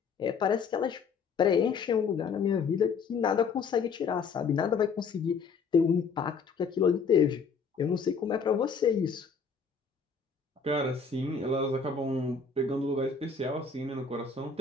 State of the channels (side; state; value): right; quieter; 5.4 dB